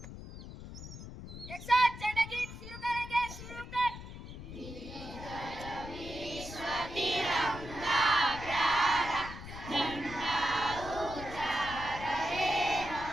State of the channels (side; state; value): left; noise; rumble, 12 dB below the sound